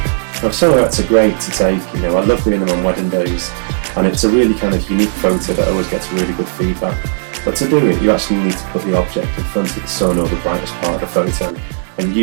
Now, silhouettes are great to take, I love doing them on wedding days, and it's a really kind of unique photo that always gets really good feedback. But to do it, you actually need to put the object in front of the sun or the brightest part of the photo, and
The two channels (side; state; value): left; silent; digital silence